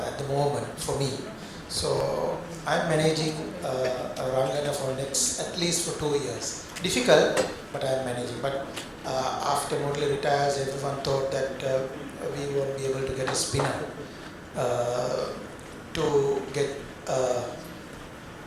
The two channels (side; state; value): both; identical; correlation 1.00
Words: the moment for me. So I'm managing Rangana for at least for 2 years. Difficult, but I'm managing. But after Murali retires, everyone thought that we won't be able to get a spinner to get